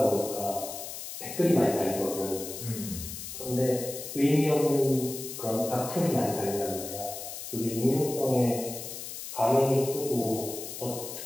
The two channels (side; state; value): left; noise; hiss, 9 dB below the sound